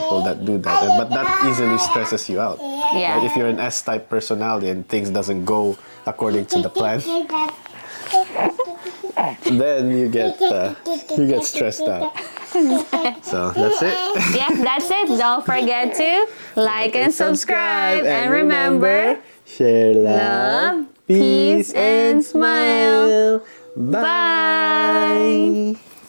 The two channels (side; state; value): both; inverted; correlation -1.00